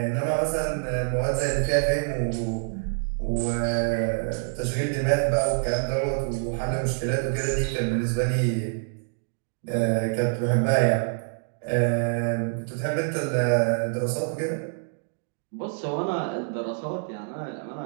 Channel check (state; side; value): silent; left; digital silence